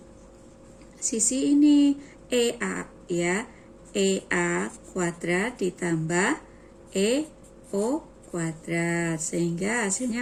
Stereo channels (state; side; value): identical; both; correlation 1.00